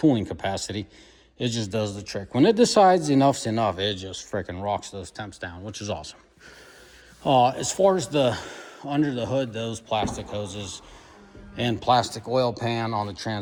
capacity. It just does the trick. When it decides enough's enough, it just freaking rocks those temps down, which is awesome. As far as the under the hood, those plastic hoses and plastic oil pan on the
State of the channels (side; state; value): both; identical; correlation 1.00